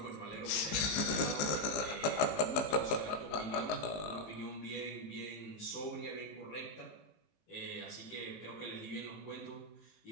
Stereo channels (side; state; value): right; late; 19 ms